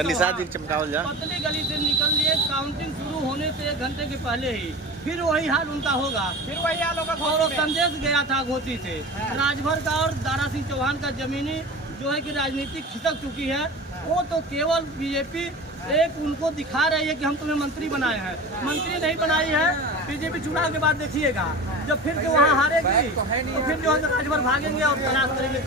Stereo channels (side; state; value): both; normal; correlation 0.33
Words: गली से निकल लिए। काउंटिंग शुरू होने से 1 घंटे के पहले ही फिर वही हाल उनका होगा। फिर वही हाल होगा। और वो संदेश गया था घोसी से। राजभर का और दारा सिंह चौहान का जमीनी जो है कि राजनीतिक खिसक चुकी है। वो तो केवल बीजेपी एक उनको दिखा रही है कि हम तुम्हें मंत्री बनाए हैं। मंत्री नहीं बनाई है। बीजेपी चुनाव के बाद देखिएगा जब फिर से वहाँ हारेगी तो फिर जो है राजभर भागेंगे और तलाश करेंगे